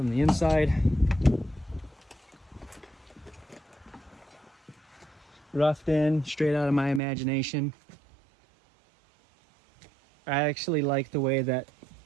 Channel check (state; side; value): drops out; left; at 7.0 s